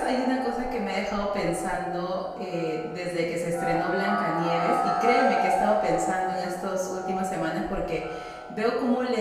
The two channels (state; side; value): identical; both; correlation 1.00